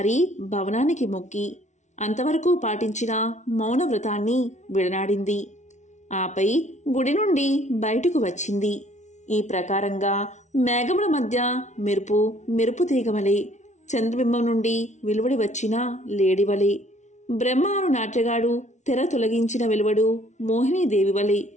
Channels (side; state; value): right; late; 0.34 ms